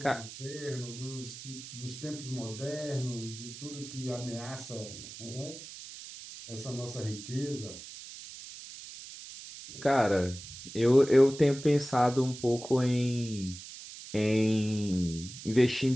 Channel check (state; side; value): noise; right; hiss, 13 dB below the sound